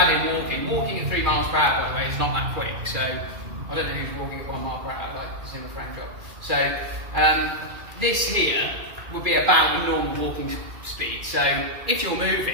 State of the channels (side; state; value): left; late; 2.4 ms